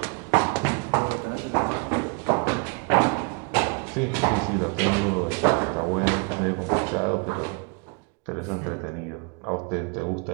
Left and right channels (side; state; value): left; quieter; 34.4 dB